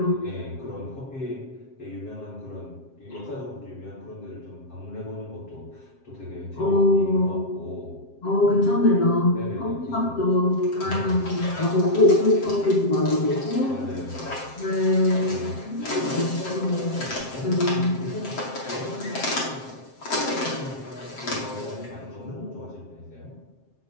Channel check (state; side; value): late; right; 7.6 ms